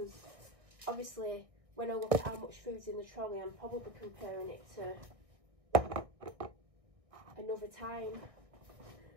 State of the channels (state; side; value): late; left; 1.6 ms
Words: obviously when I look at how much food's in the trolley, I'm probably comparing it to another time.